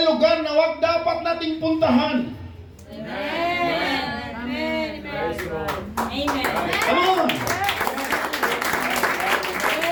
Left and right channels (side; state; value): both; identical; correlation 1.00